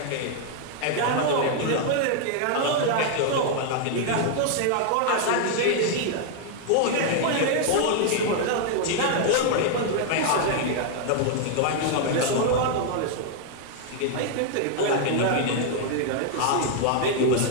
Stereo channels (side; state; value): both; different; correlation 0.00